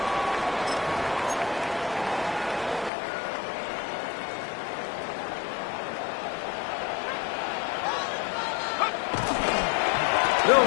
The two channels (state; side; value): drops out; right; at 2.9 s